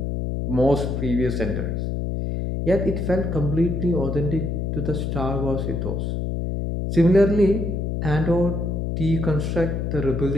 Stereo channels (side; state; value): left; noise; hum, 2 dB below the sound